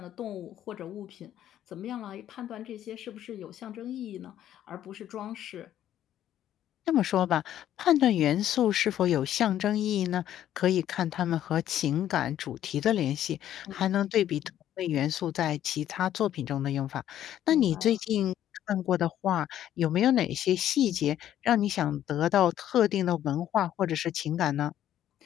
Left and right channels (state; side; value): quieter; right; 11.5 dB